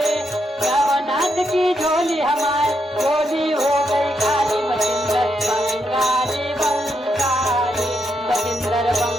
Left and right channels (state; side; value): normal; both; correlation 0.81